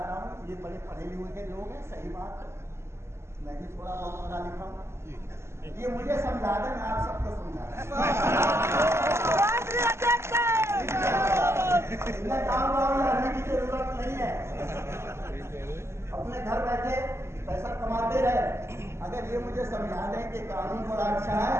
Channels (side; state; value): left; late; 0.13 ms